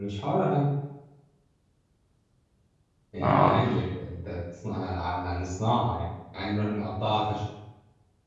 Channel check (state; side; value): identical; both; correlation 1.00